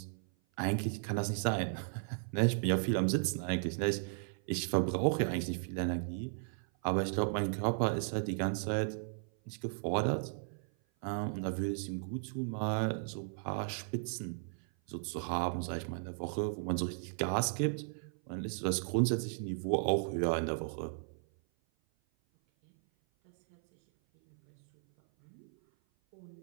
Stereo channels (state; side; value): silent; left; 54 dB below the other